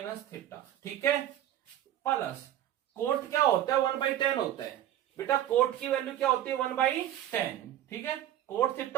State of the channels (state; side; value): quieter; left; 12.0 dB